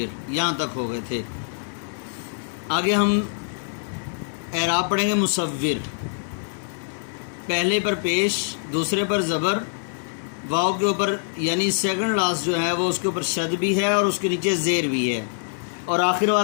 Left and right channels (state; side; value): silent; right; digital silence